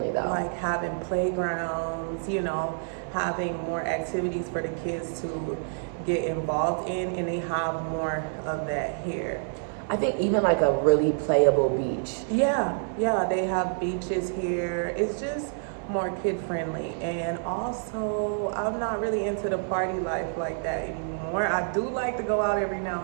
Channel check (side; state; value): left; silent; 60 dB below the other